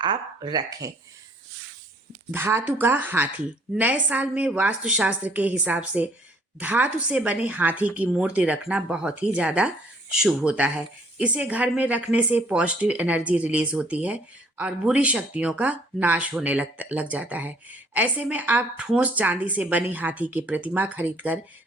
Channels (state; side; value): normal; both; correlation 0.60